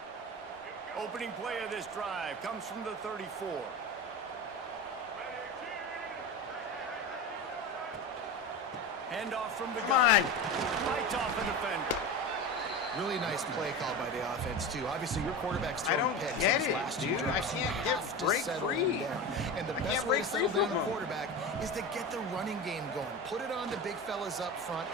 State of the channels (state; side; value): normal; both; correlation 0.26